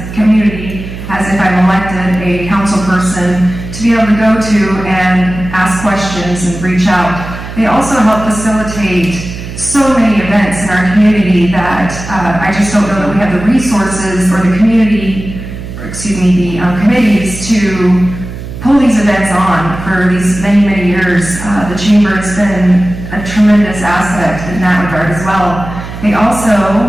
community, as if I'm elected a council person, to be able to go to and ask questions and reach out. They also help facilitate so many events in our community that I just don't know that we have the resources or the community, the committees to pull these events on for these many, many years. The Chamber has been a tremendous asset in that regard as well. They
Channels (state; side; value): noise; right; hum, 10 dB below the sound